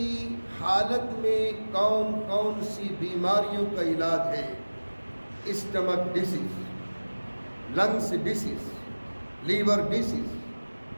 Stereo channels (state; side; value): inverted; both; correlation -1.00